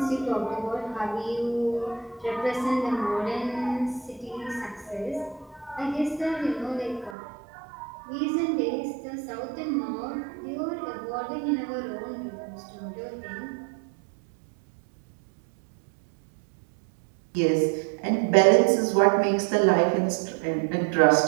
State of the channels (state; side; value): drops out; left; at 7.2 s